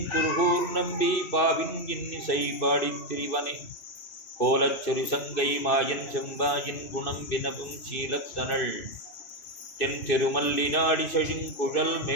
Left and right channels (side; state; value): right; late; 2.6 ms